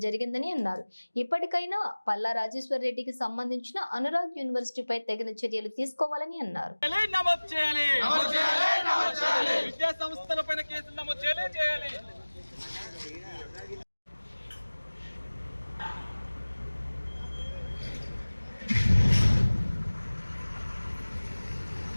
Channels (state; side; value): inverted; both; correlation -1.00